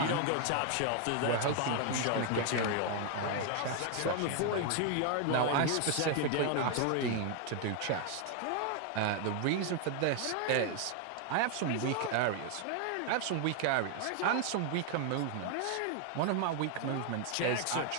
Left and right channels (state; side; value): different; both; correlation 0.00